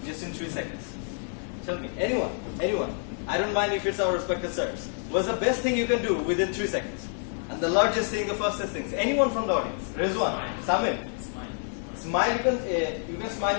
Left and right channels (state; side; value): silent; right; 55 dB below the other